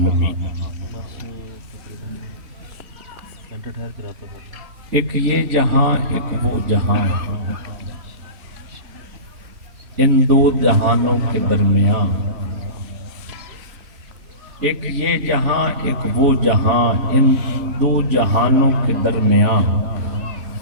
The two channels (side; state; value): left; late; 3.8 ms